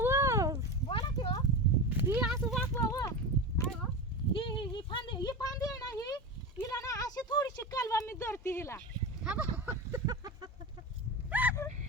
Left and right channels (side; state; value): both; normal; correlation 0.24